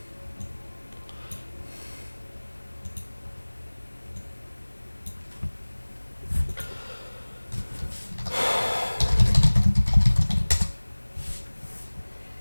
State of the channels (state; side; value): inverted; both; correlation -1.00